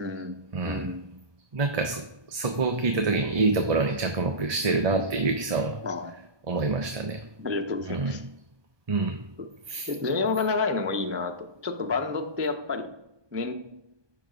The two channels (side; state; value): left; late; 1.2 ms